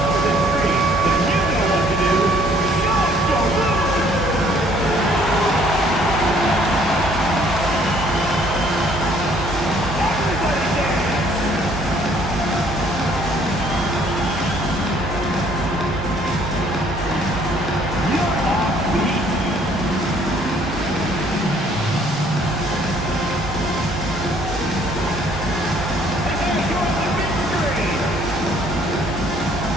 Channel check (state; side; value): normal; both; correlation 0.61